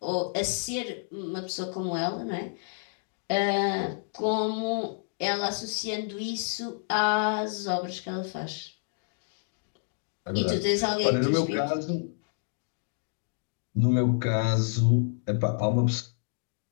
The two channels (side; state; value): right; silent; digital silence